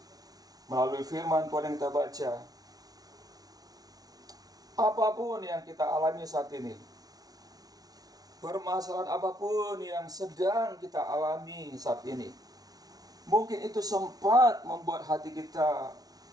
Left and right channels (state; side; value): late; left; 0.18 ms